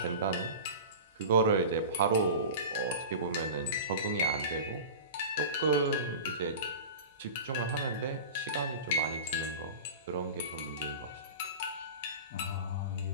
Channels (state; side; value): inverted; both; correlation -0.32